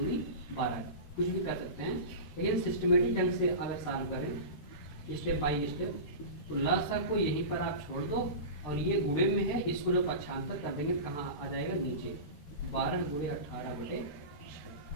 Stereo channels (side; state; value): right; late; 13 ms